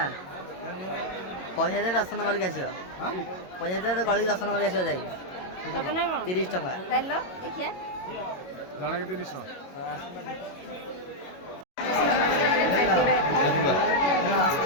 ପଇସା ଦେଇ ଦର୍ଶନ କରିକି ଆସିବ। ପଇସା ଦେଇ ଗଳିକି ଦର୍ଶନ କରିକି ଆସିବ ଯାଇକି 30 ଟଙ୍କା। ଜଣକେ 30 ଟଙ୍କା।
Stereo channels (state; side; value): late; right; 22 ms